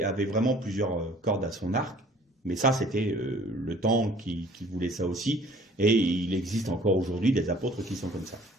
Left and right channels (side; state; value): both; normal; correlation 0.53